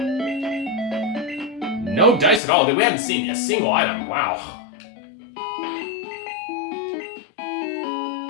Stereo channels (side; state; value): right; drops out; at 2.4 s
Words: No dice at all. We haven't seen a single item. Wow.